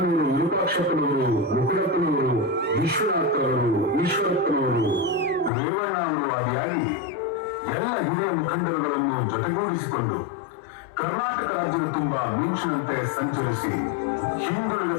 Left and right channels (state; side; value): drops out; right; at 5.5 s